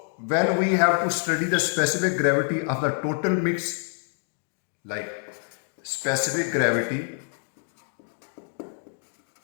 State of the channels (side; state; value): right; silent; 56 dB below the other